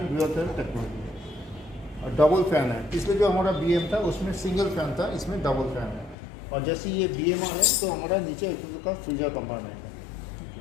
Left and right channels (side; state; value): right; drops out; at 6.2 s